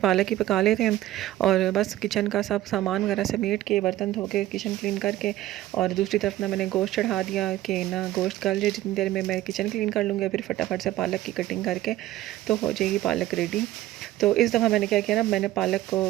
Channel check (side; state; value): left; quieter; 14.8 dB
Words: ही पका लेते हैं। और बस किचन का सब सामान वगैरह समेट के, बर्तन धो के, किचन क्लीन करके, और दूसरी तरफ ना मैंने गोश्त चढ़ा दिया कि ना गोश्त गल जाए, जितनी देर में मैं किचन क्लीन कर लूँगी, फिर फटाफट से पालक की कटिंग करके तो हो जाएगी पालक रेडी। तो इस दफ़ा मैंने क्या किया ना, मैंने पालक को